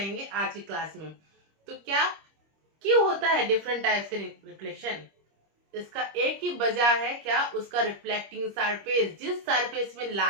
आज की क्लास में। तो क्या क्यों होता है डिफरेंट टाइप्स के रिफ्लेक्शन, इसका एक ही वजह है, क्या उसका रिफ्लेक्टिंग सरफेस, जिस सरफेस में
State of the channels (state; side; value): late; left; 25 ms